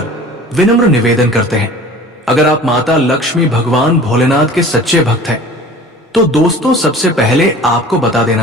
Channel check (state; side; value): normal; both; correlation 0.43